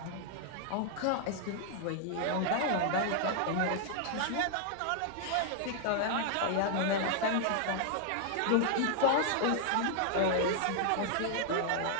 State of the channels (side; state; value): both; different; correlation 0.00